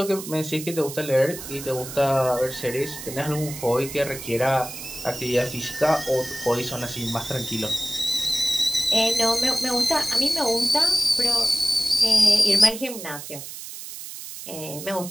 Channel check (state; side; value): noise; right; hiss, 11 dB below the sound